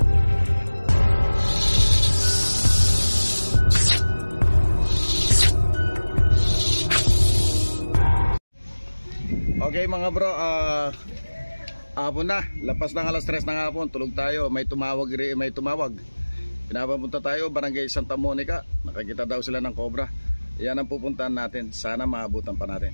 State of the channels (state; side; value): inverted; both; correlation -1.00